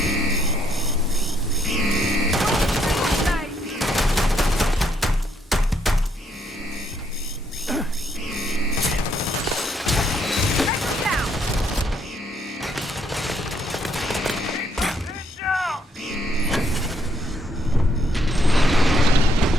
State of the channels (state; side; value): normal; both; correlation 0.72